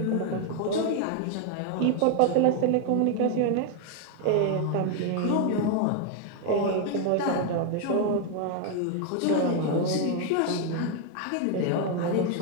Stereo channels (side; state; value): both; different; correlation 0.01